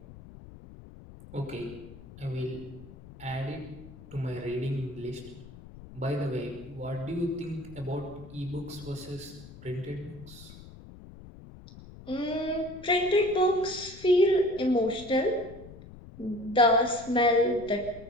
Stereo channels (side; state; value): left; noise; rumble, 17 dB below the sound